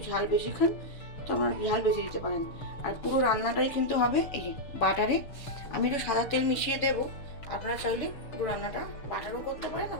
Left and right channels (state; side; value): late; right; 6.6 ms